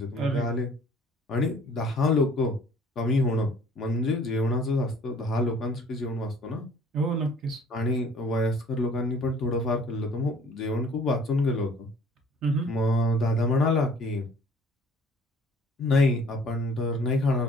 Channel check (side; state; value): both; normal; correlation 0.54